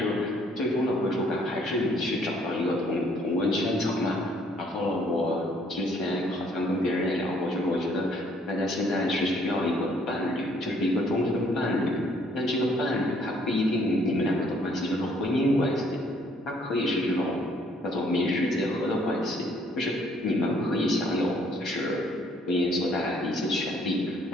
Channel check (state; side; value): normal; both; correlation 0.64